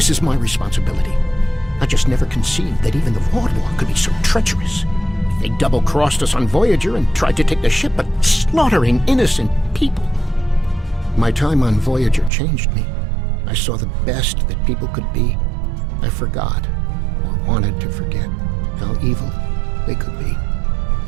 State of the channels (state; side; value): drops out; left; at 12.3 s